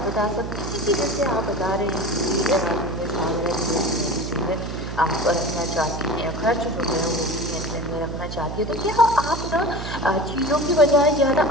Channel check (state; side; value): noise; right; hum, 7 dB below the sound